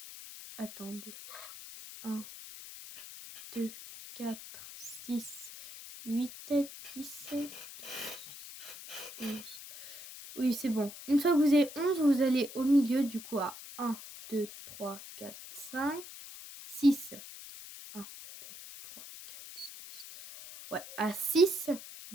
Attendez. 1, 2, 4, 6, 8, 17, 11. Oui, c'est bon. Une fois que vous avez 11, vous allez au milieu du coup à 1, 2, 3, 4, 5, 6. 1, 2, 3, 4, 5, 6. Ouais, à 6,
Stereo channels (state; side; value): noise; left; hiss, 13 dB below the sound